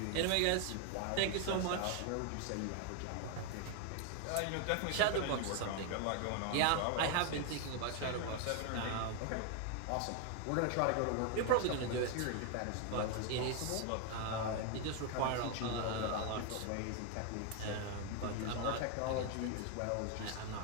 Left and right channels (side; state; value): both; different; correlation 0.01